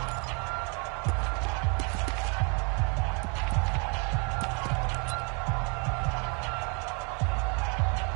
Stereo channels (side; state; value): left; quieter; 35.1 dB